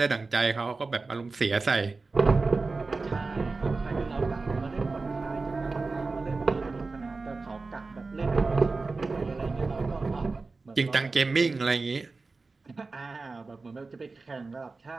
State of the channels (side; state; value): left; quieter; 3.8 dB